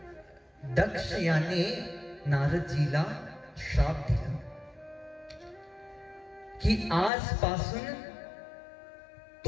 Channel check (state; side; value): drops out; right; at 7.1 s